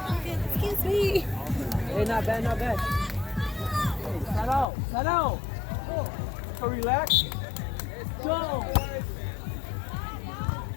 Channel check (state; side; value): drops out; right; at 4.7 s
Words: Excuse me. Hey, not bad, not bad. Hey, set out. So relax. Go.